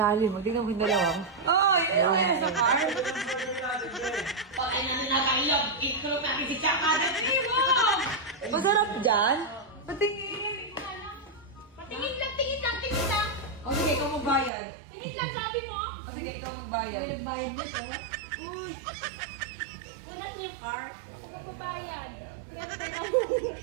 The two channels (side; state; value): left; drops out; at 14.5 s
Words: lalim. Tingnan mo yung dalawa. Ayun sa car. Pag na nakailag, ito natin si Chakada. Masarap dyan? Patingin. Tingin lang. O sige, ikaw magbayad. Tingin lang, sabi mo. O sige, ikaw magbayad. Bayad mo to. Una yung car. Ako magbabayad.